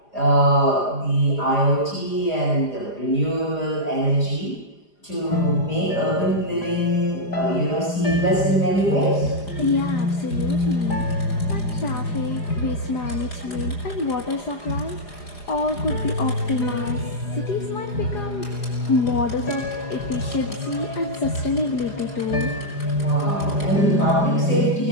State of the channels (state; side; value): late; right; 4.9 ms